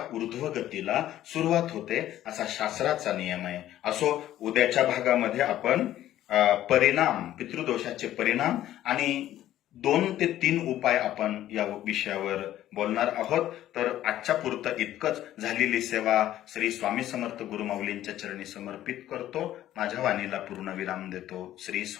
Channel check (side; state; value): right; quieter; 13.0 dB